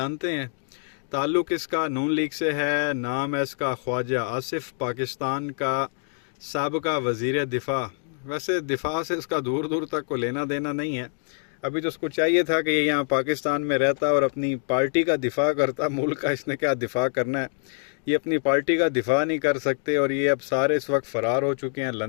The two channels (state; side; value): silent; right; digital silence